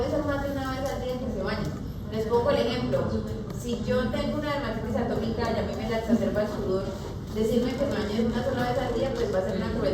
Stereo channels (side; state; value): both; identical; correlation 1.00